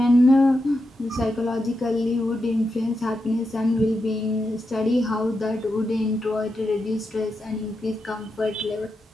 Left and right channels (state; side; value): normal; both; correlation 0.87